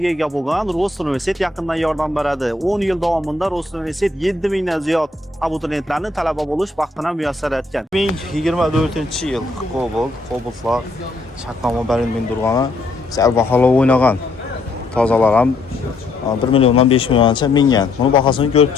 ega bo'lgan Rost universitet yaqindan yordam beradi. 10 yil davomida Rost universitet 7000 dan ziyod abituriyentlarni talaba bo'lish baxtini muyassar etgan. 2024-yil Cobalt'lar shartnoma berilgan turgani sal bahola o'ynagan. Tozalar ham 1 milliondan 5 milliongacha mingan. Buni bahosini ko'rib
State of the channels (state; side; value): quieter; right; 3.0 dB